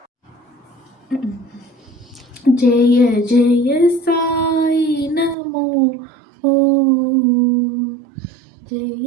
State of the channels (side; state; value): left; drops out; at 5.4 s